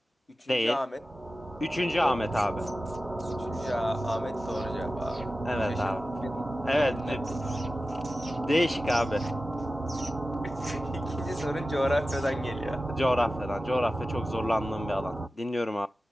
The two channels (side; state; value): both; normal; correlation 0.94